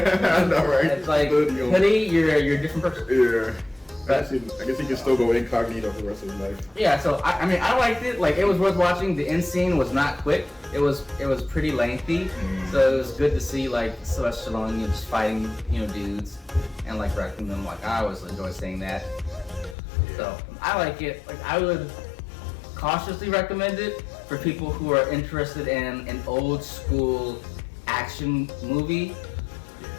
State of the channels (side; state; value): right; drops out; at 19.8 s